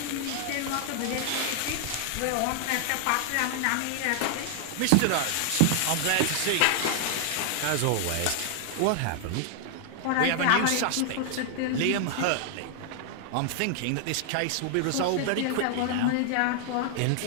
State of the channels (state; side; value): different; both; correlation 0.00